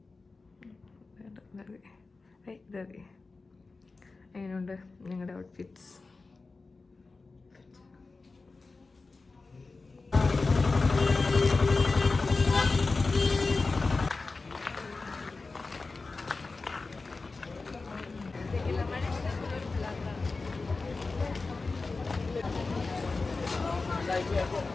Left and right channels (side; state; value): right; quieter; 3.8 dB